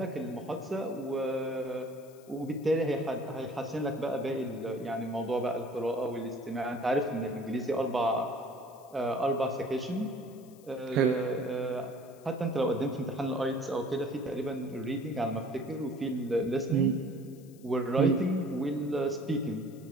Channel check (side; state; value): left; noise; hiss, 26 dB below the sound